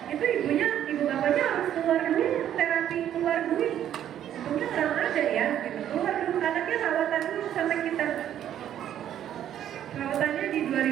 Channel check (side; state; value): left; quieter; 10.7 dB